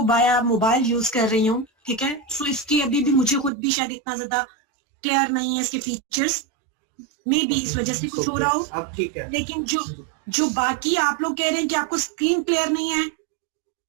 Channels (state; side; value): drops out; left; at 3.5 s